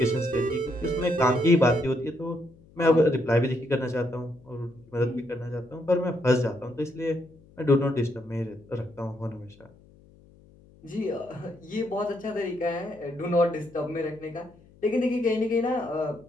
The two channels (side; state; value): left; noise; hum, 26 dB below the sound